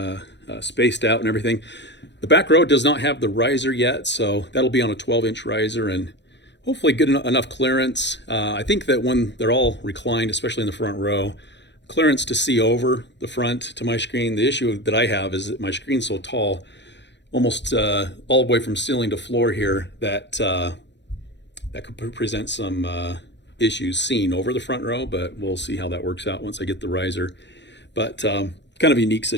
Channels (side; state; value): right; late; 0.52 ms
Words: out and everything. The back row does not have the riser yet, so that'll be on a 12-inch riser and hopefully good enough clearance. I think that when they're all reclined, especially in the front row, clearance to see over the front to my screen. The issue that I have is that my screen's so tall, almost all the way from ceiling to floor here, that that could present some issues seen over the front row, but we'll see how that works out once I get the riser. But kind of a unique